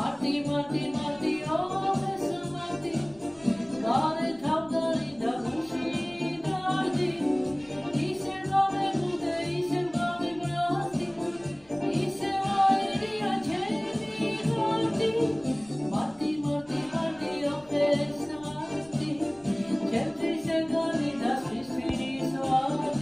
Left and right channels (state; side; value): noise; left; rumble, 29 dB below the sound